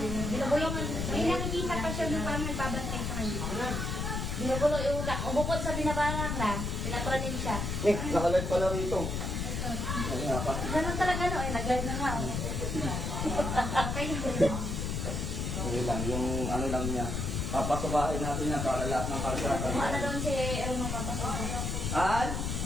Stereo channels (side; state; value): left; noise; rumble, 2 dB below the sound